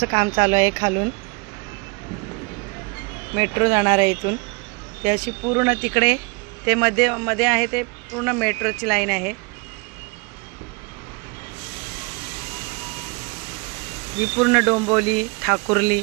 काम चालू आहे. खालून मेट्रो जाणार आहे इथून. ते अशी पूर्ण तिकडे ते मध्ये आहे ते पूर्ण मेट्रोची लाईन आहे. ही पूर्ण डोंबिवली, ठाकुर्ली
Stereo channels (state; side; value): quieter; left; 30.4 dB